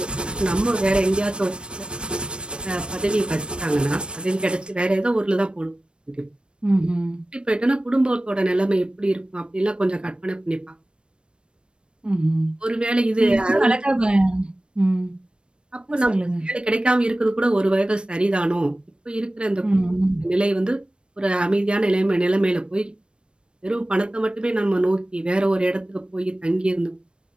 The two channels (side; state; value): left; late; 0.055 ms